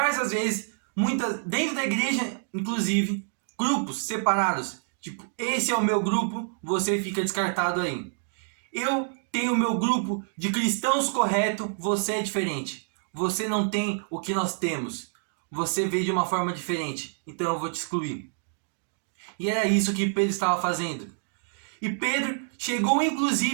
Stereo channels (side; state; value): left; silent; digital silence